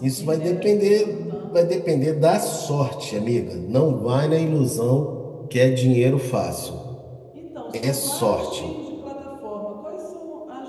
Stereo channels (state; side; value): identical; both; correlation 1.00